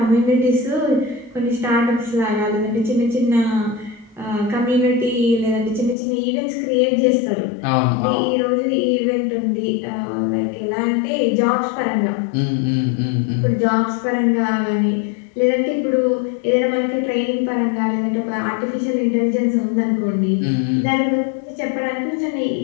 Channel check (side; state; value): right; drops out; at 6.0 s